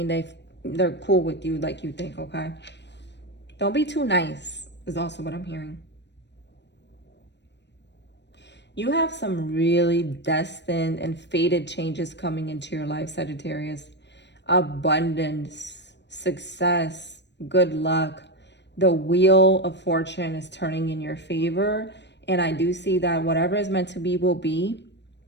they're cool with you like you think, okay? Don't be too nice is also what I'm hearing. You have some really destined and fated changes coming into your life, Sagittarius. Abundance, success, good luck. The wheel of fortune is turning in your favor. And I do see that whatever is meant to be will be.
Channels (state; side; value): late; right; 0.51 ms